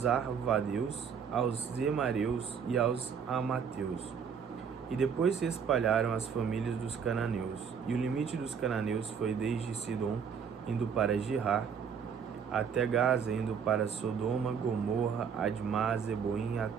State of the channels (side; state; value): left; quieter; 6.8 dB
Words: arvadeus, aos zemareus e aos amateus. E depois se espalharam as famílias dos cananeus, e o limite dos cananeus foi desde Sidom, indo para Girar, até Gaza, indo para Sodoma, Gomorra, Admá, Zeboim,